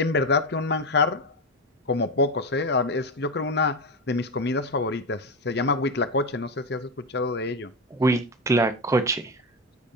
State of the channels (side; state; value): both; normal; correlation 0.15